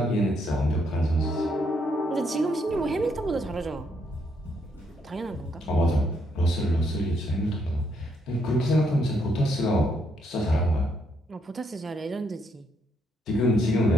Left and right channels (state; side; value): normal; both; correlation 0.74